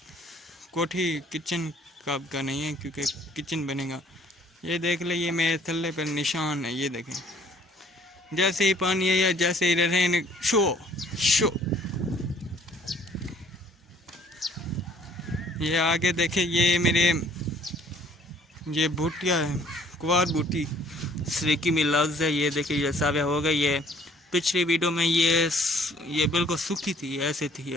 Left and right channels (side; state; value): both; normal; correlation 0.58